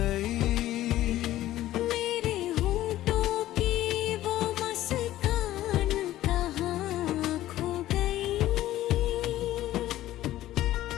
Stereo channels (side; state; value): right; quieter; 14.5 dB